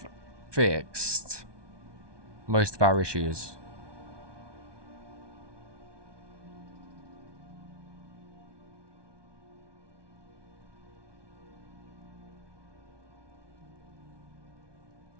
fixed most of our issues.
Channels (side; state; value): left; late; 1.2 ms